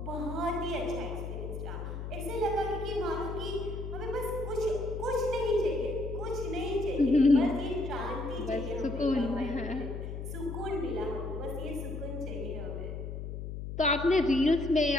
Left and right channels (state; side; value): noise; left; hum, 6 dB below the sound